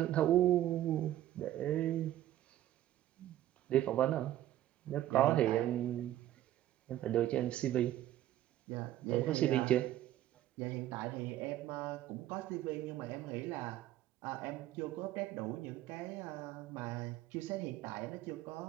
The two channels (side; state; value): left; quieter; 13.3 dB